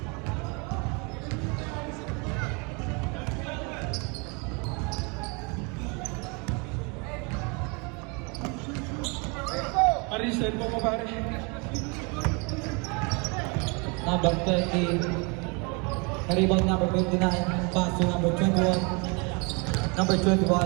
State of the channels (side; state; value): left; quieter; 31.5 dB